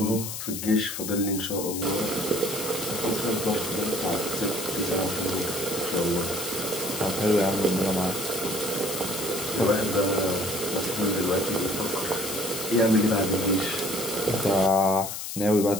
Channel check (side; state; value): left; noise; hiss, 6 dB below the sound